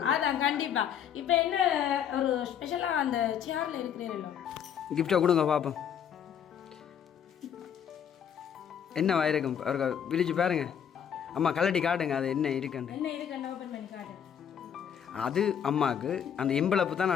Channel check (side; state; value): right; quieter; 8.5 dB